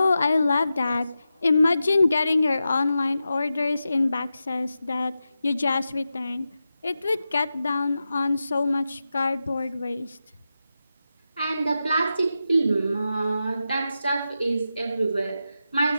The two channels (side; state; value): both; inverted; correlation -0.90